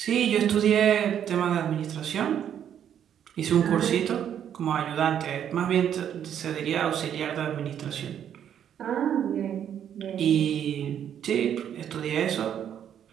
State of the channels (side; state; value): left; quieter; 9.4 dB